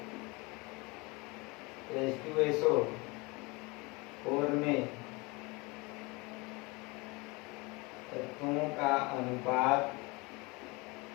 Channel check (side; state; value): right; quieter; 26.1 dB